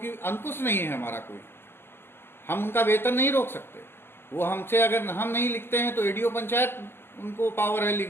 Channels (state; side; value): late; right; 0.11 ms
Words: अंकुश नहीं है हमारा कोई, हम उनका वेतन नहीं रोक सकते। वो हमसे अगर हम नहीं लिखते हैं तो एडीओ पंचायत उनको पावर है, लिख